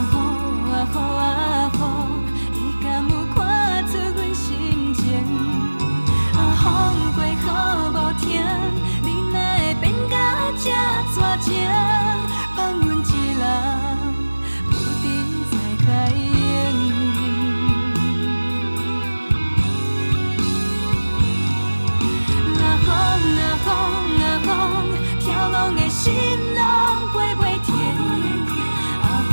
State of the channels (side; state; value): both; inverted; correlation -1.00